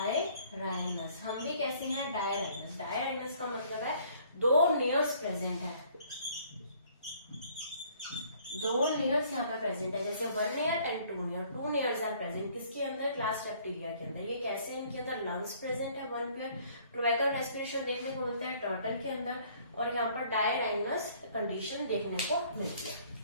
हम ये कैसे हैं? डायराइनस। डायराइनस का मतलब है 2 नेयर्स प्रेजेंट है। 2 नेयर्स यहाँ पे प्रेजेंट है, जैसे 1 nare and 2 nare. 2 nares are present किसके अंदर? क्लास रेप्टिलिया के अंदर। ये कैसे? इनके अंदर लंग्स प्रेजेंट है 1 पेयर। क्लोएकल रेस्पिरेशन देखने को मिलता है टर्टल के अंदर। और यहाँ पर डायराइनस कंडीशन देखने को मिलती है।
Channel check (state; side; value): inverted; both; correlation -0.59